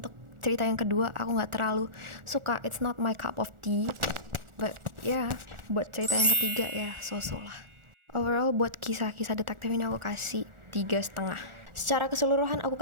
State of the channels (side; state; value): left; late; 1.4 ms